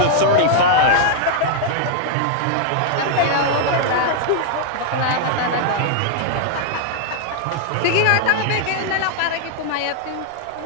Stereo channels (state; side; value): different; both; correlation -0.01